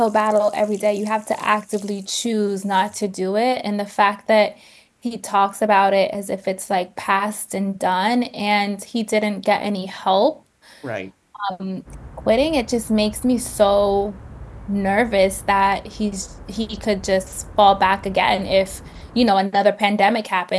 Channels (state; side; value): identical; both; correlation 1.00